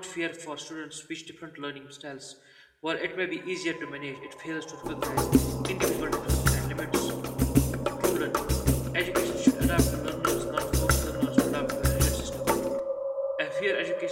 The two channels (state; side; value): identical; both; correlation 1.00